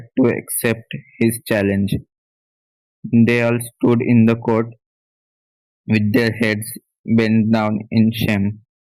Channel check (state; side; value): identical; both; correlation 1.00